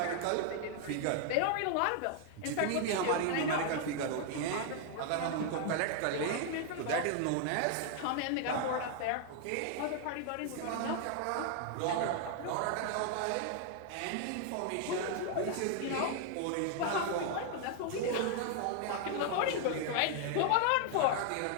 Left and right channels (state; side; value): different; both; correlation 0.00